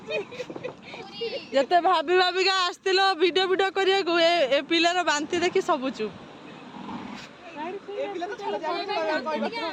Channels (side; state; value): both; identical; correlation 1.00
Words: जते भाभी भाभी का आस्तिलो वीडियो वीडियो करिया को ए पिलार बांती देखि सब चुप।